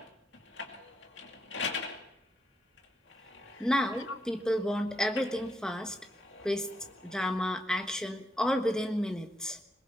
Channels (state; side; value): normal; both; correlation 0.80